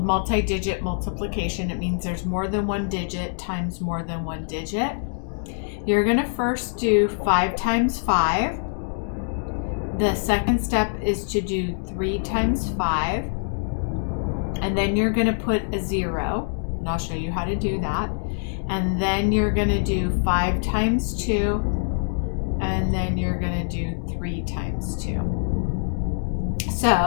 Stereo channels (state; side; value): silent; right; digital silence